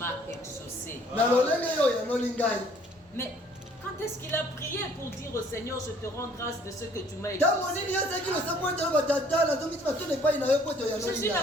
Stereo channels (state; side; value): normal; both; correlation 0.59